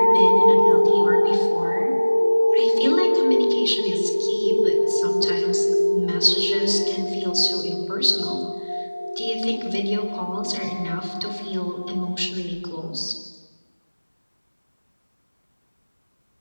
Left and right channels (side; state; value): both; inverted; correlation -1.00